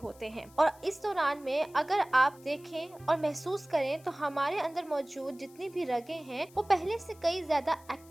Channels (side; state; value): left; noise; hiss, 26 dB below the sound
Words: हैं। और इस दौरान में अगर आप देखें और महसूस करें तो हमारे अंदर मौजूद जितनी भी रगें हैं वो पहले से कई ज्यादा